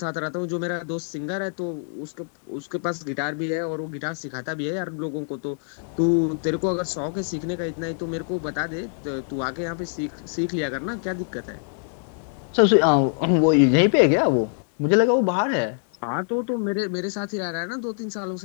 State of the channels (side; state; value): right; silent; digital silence